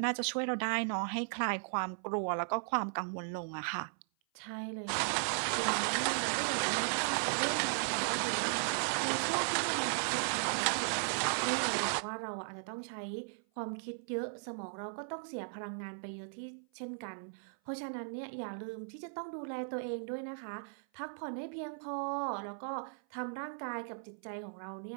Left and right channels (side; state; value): left; silent; 53 dB below the other